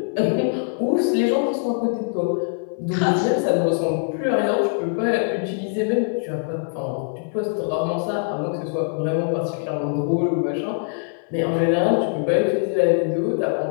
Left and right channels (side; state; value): right; silent; 57 dB below the other